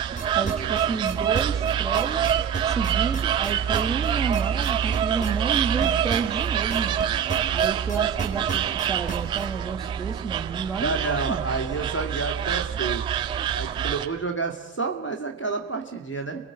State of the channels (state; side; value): quieter; left; 7.3 dB